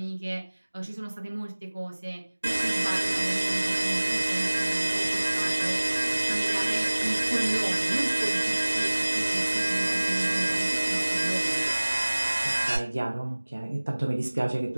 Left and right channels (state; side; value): inverted; both; correlation -1.00